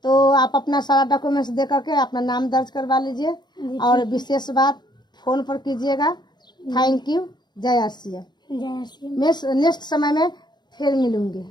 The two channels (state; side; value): late; right; 0.21 ms